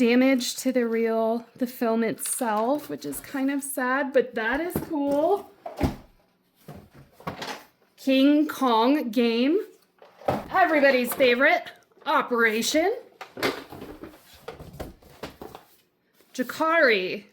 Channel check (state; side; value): identical; both; correlation 1.00